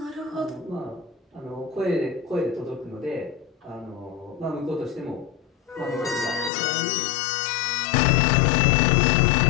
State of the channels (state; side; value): drops out; right; at 6.5 s